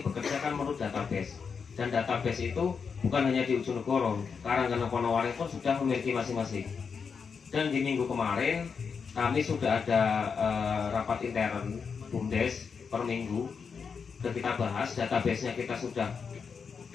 bekerja kan menurut database, dan database itu bukan hanya di Ujonegoro, Karanggeneng Ponowaring pun sudah memiliki masing-masing. Dan di minggu kemarin kami sudah ada rapat intern BUMDes per minggu, dan kita bahas database-nya, kita sudah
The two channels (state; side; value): quieter; right; 5.9 dB